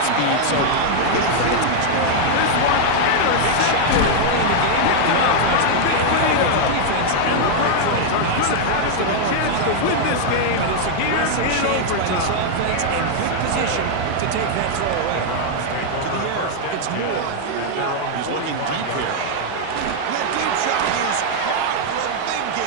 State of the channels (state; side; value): different; both; correlation 0.00